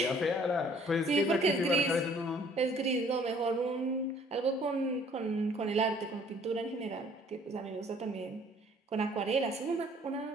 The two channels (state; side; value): normal; both; correlation 0.58